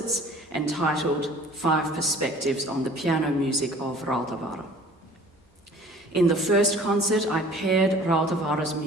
entitled 5 Perspectives on the Piano Music of Rautavaara. In the first concert, I paired Rautavaara's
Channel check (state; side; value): normal; both; correlation 0.49